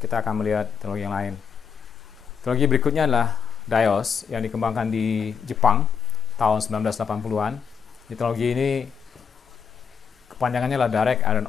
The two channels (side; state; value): right; quieter; 6.8 dB